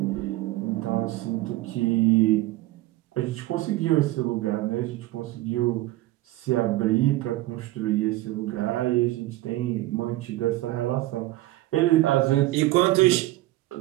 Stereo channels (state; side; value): quieter; left; 17.3 dB